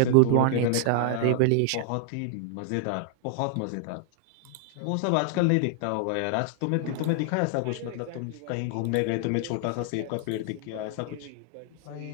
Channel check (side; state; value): both; different; correlation 0.00